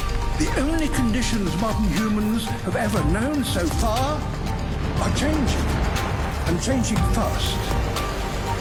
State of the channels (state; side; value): identical; both; correlation 1.00